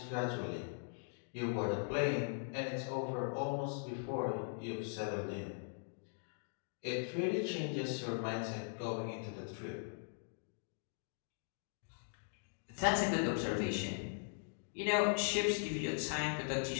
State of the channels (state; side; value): silent; right; digital silence